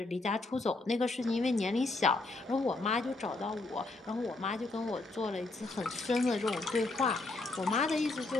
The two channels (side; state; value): right; quieter; 3.2 dB